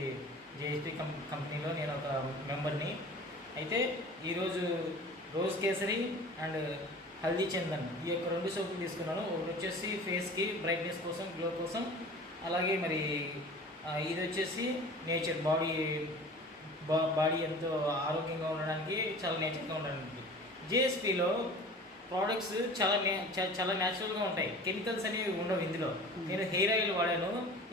కంపెనీలో నేను ఒక మెంబర్ని. అయితే ఈరోజు రోజ్ కేసరి అండ్ హల్దీ చందన్ ఈ యొక్క 2 సోపులు తీసుకున్నాను. ఒకటి వచ్చేసి ఫేస్కి బ్రైట్నెస్ కోసం, గ్లో కోసం. అలాగే మరి ఇది వచ్చేసి నేచర్ బాడీ ఎంతో ఆరోగ్యంగా ఉండడానికి, చాలా నేచర్గా ఉండడానికి. జేఎస్పీలో ప్రోడక్ట్స్ చాలా న్యాచురల్గా ఉంటాయి. కెమికల్స్ అనేవి ఉండవు ఇందులో. నేను హెయిర్ ఆయిల్ వాడాను.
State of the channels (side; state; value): both; normal; correlation 0.41